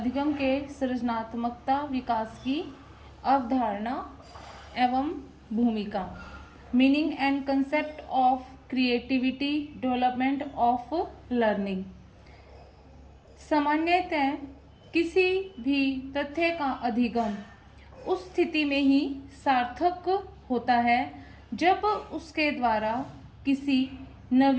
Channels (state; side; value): identical; both; correlation 1.00